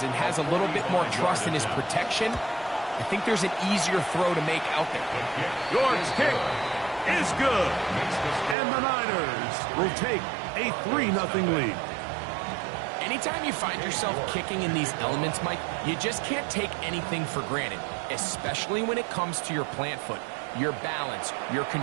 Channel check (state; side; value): drops out; left; at 8.6 s